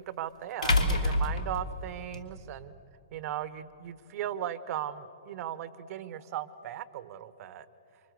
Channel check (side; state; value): both; inverted; correlation -0.46